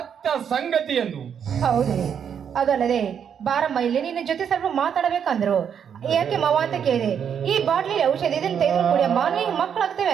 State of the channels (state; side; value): quieter; left; 7.9 dB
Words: ಸಂಗತಿ ಎಂದು. ಹೌದ್ರಿ. ಅದಲ್ಲದೆ ಬಾರಮ್ಮ ಇಲ್ಲಿ ನಿನ್ನ ಜೊತೆ ಸ್ವಲ್ಪ ಮಾತಾಡಬೇಕಂದ್ರು. ಯಾಕೆ ಮಾವ ಅಂತ ಕೇಳಿದೆ. ಈ ಬಾಟ್ಲಿ ಔಷಧಿ ಇದನ್ನ ತೆಗೆದು ಕುಡಿಯಮ್ಮ, ನೀವು ಮಕ್ಕಳಾಗ್ತೇವೆ